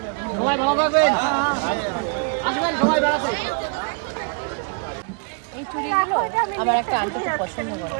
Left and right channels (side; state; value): left; quieter; 39.0 dB